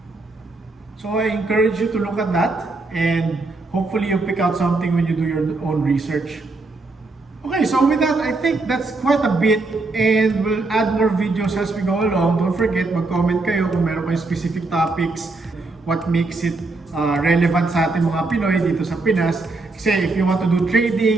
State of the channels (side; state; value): left; quieter; 3.4 dB